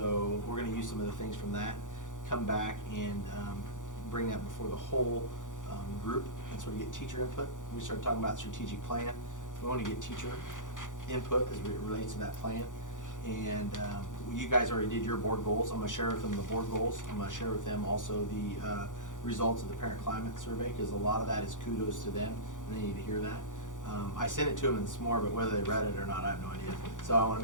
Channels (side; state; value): right; late; 0.87 ms